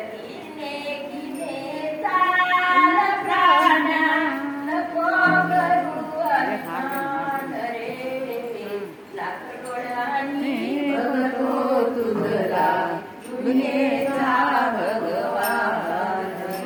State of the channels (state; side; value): identical; both; correlation 1.00